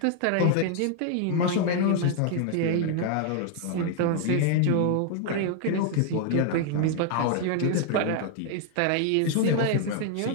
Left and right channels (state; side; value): different; both; correlation 0.00